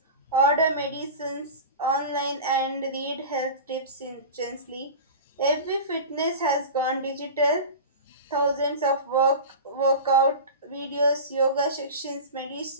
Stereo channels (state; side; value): inverted; both; correlation -0.30